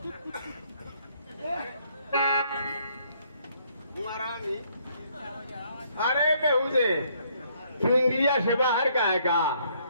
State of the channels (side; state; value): both; inverted; correlation -0.67